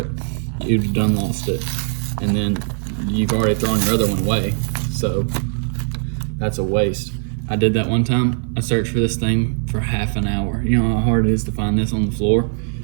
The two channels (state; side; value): silent; left; digital silence